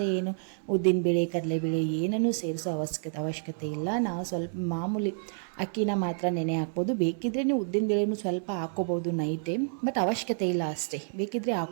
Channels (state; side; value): silent; left; digital silence